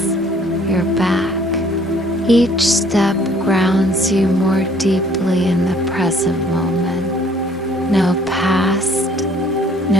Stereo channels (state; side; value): normal; both; correlation 0.59